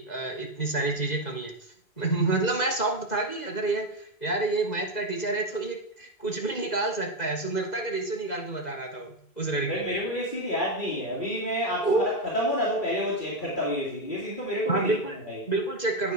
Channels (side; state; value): right; late; 2.0 ms